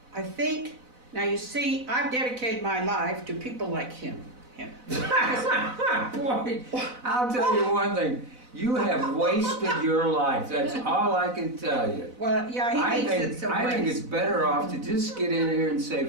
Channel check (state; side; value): late; left; 4.0 ms